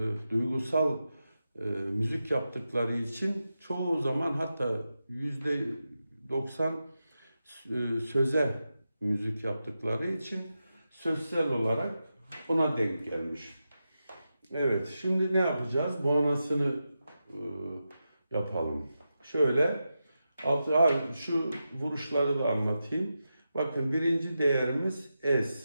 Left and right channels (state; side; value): inverted; both; correlation -0.90